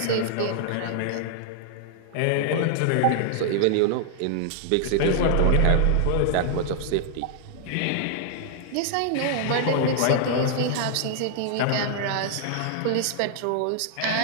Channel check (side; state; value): both; different; correlation 0.00